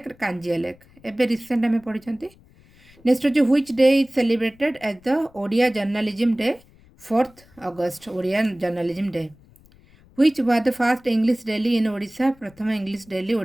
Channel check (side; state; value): left; noise; rumble, 28 dB below the sound